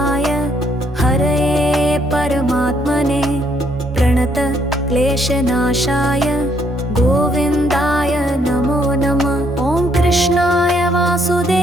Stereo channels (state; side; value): normal; both; correlation 0.70